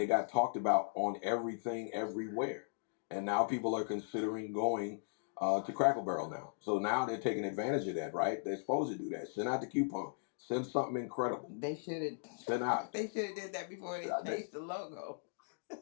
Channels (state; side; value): silent; right; digital silence